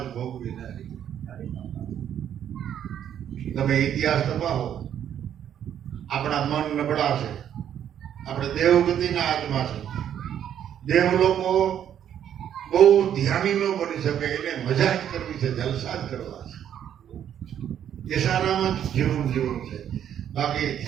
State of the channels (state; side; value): quieter; left; 9.8 dB